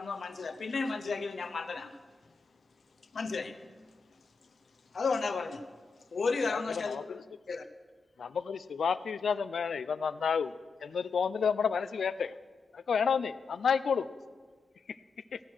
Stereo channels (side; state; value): right; quieter; 5.4 dB